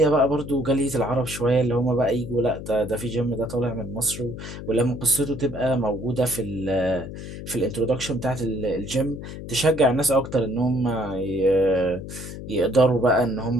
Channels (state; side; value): noise; left; hum, 10 dB below the sound